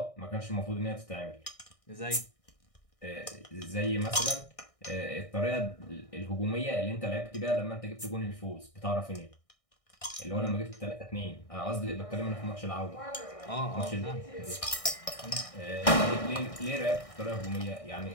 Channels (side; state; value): right; late; 1.6 ms